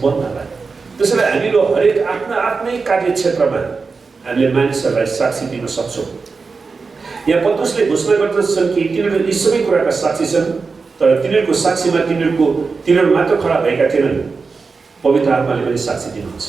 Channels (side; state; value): left; quieter; 4.6 dB